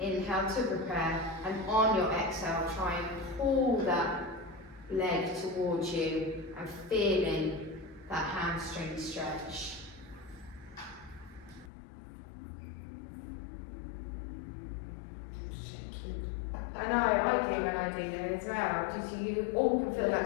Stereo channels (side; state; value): right; drops out; at 11.7 s